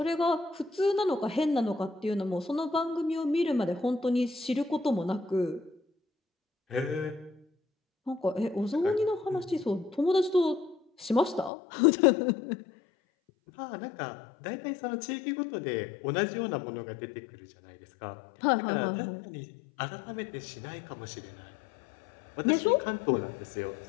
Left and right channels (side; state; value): right; drops out; at 11.5 s